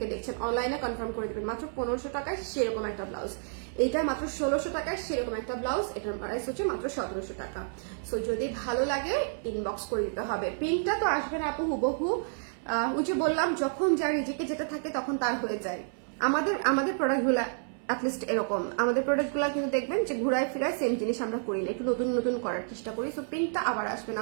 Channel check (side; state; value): left; silent; 58 dB below the other